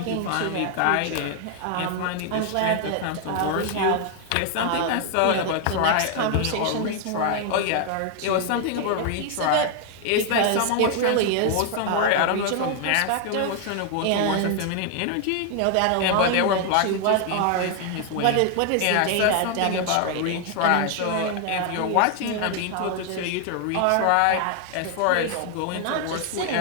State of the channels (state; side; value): different; both; correlation 0.00